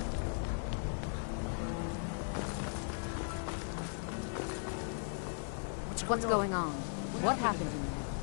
What's going on? What happened in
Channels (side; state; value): right; silent; 53 dB below the other